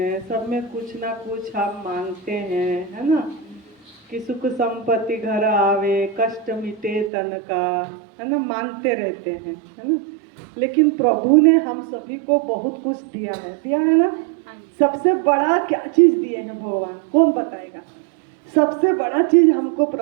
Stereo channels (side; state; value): left; drops out; at 7.1 s